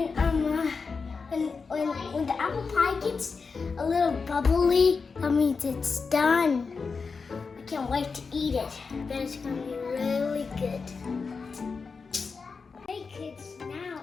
When the apple pie gets a little bubbly, that means it's done. I can't wait to eat it. But it's gonna be really good. Hey kids,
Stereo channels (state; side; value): quieter; right; 4.9 dB